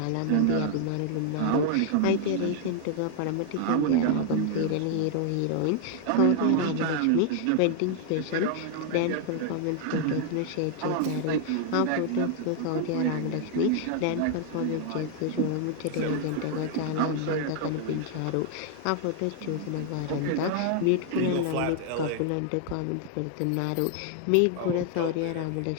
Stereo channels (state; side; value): different; both; correlation 0.00